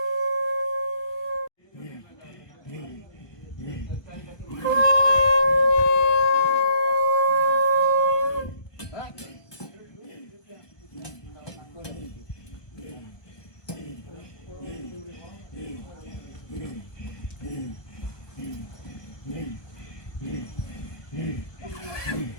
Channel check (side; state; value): right; late; 1.2 ms